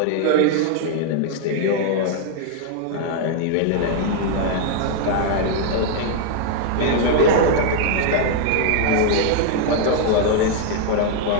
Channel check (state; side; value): different; both; correlation 0.00